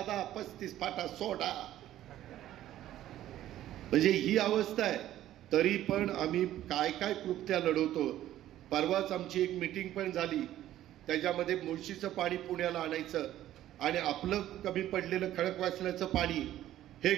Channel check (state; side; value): quieter; left; 13.1 dB